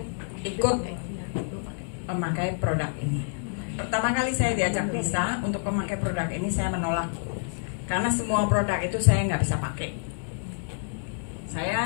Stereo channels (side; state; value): right; silent; digital silence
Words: ikut memakai produk ini. Pertama kali saya diajak Lisa untuk memakai produk ini, saya menolak karena semua produk itu saya nggak bisa pakai.